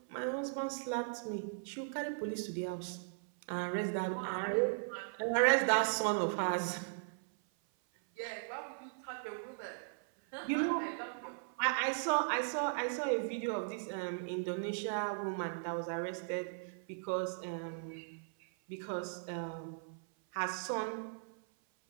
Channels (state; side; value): silent; left; 52 dB below the other